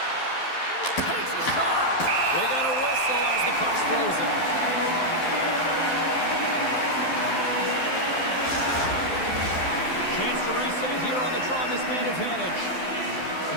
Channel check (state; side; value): late; right; 12 ms